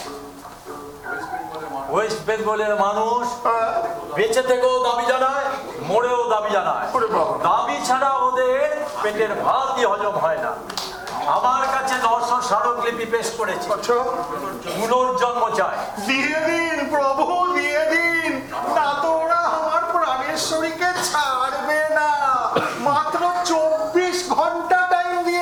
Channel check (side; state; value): both; identical; correlation 1.00